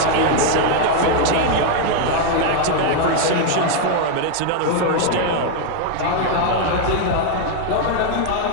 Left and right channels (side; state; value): both; different; correlation 0.00